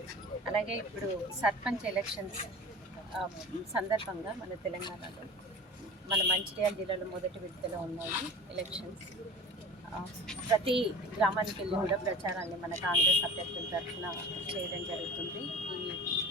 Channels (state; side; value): normal; both; correlation 0.37